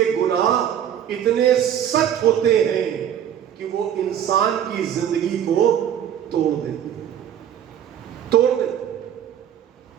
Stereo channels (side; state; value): left; quieter; 9.8 dB